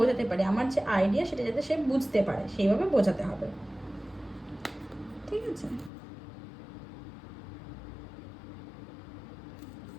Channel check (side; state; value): right; drops out; at 5.9 s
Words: পারি, আমার যে আইডিয়া সেটা যাতে সে বুঝতে পারে সেইভাবে বোঝাতে হবে, ঠিক আছে।